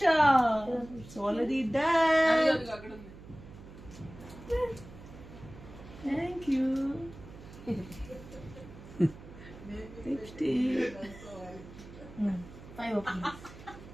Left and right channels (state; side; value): noise; right; hum, 17 dB below the sound